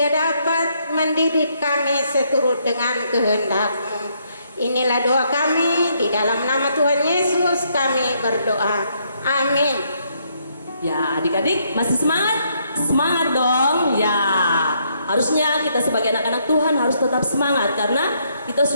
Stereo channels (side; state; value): both; inverted; correlation -0.72